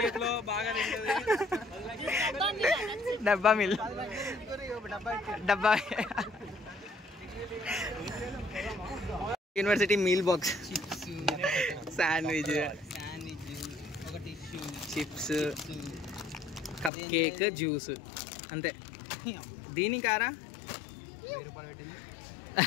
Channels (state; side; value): drops out; right; at 16.9 s